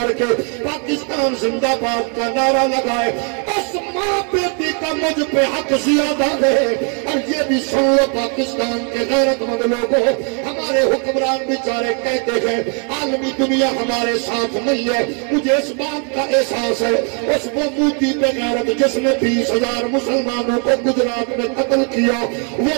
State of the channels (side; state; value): left; quieter; 39.4 dB